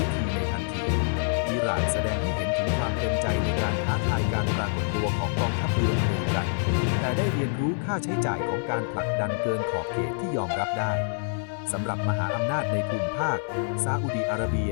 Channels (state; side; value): silent; right; 60 dB below the other